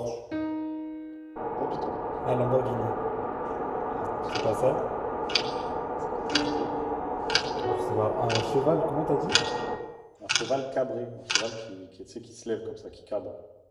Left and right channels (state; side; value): identical; both; correlation 1.00